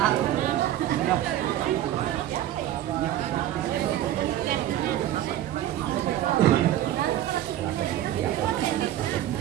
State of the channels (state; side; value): quieter; left; 12.6 dB